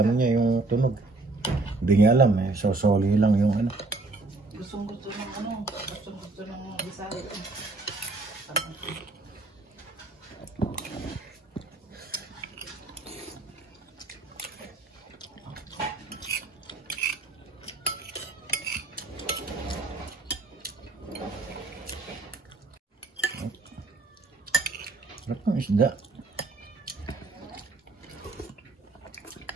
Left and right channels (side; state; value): left; quieter; 3.4 dB